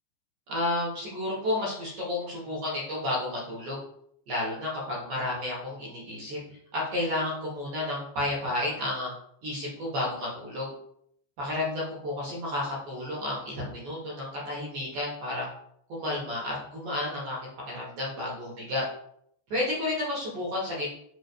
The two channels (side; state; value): left; late; 14 ms